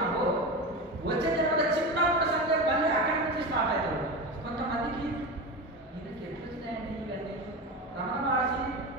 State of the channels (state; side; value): normal; both; correlation 0.23